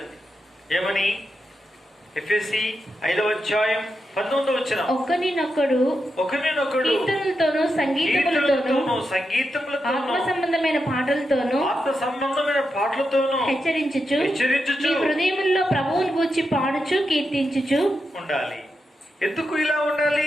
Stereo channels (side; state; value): both; normal; correlation 0.87